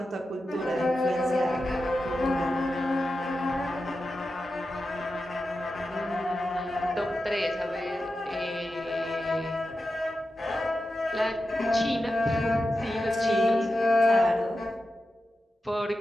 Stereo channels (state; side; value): normal; both; correlation 0.91